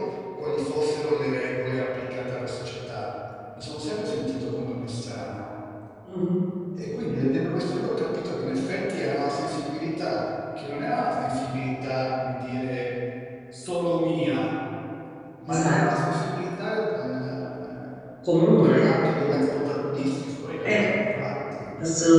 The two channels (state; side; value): identical; both; correlation 1.00